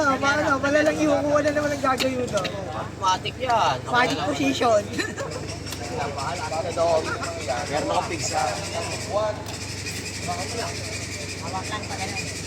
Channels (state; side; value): identical; both; correlation 1.00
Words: paano? Malalang ihukuha na naman ang gagawin mo doon. Matik yan. Fighting position. Meron akong pizza. Hawak lang pa ganun.